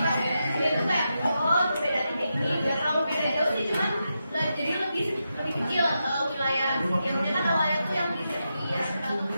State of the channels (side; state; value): both; inverted; correlation -0.87